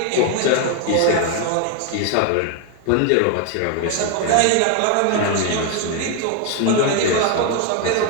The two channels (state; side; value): different; both; correlation 0.01